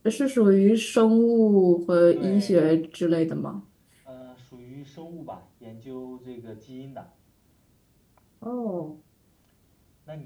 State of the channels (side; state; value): both; identical; correlation 1.00